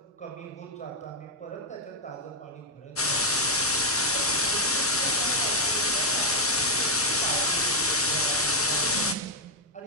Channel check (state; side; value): normal; both; correlation -0.01